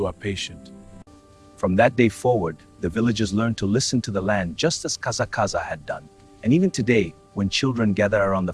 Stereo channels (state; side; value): identical; both; correlation 1.00